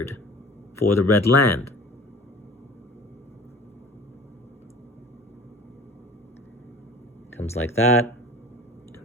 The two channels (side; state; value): both; normal; correlation 0.44